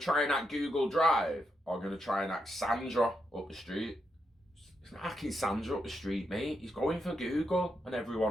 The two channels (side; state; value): both; normal; correlation 0.83